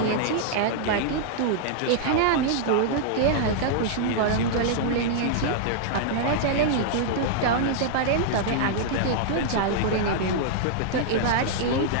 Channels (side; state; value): both; different; correlation -0.01